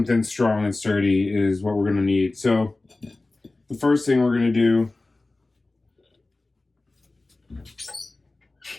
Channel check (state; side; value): quieter; right; 3.1 dB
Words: strong and sturdy, is what we're going to need. So the first thing we're going to do